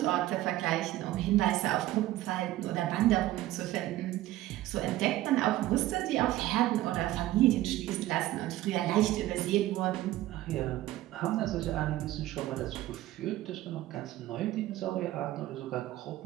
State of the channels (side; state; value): left; quieter; 15.4 dB